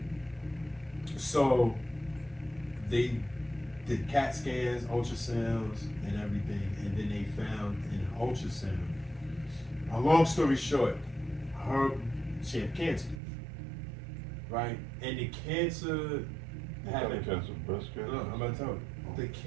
So they did CAT scans, ultrasounds, and everything, and then they found in an ultrasound. A long story short, she had cancer, right? And the cancer had breast cancer. No, I'm gonna tell you. The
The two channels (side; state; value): left; drops out; at 13.2 s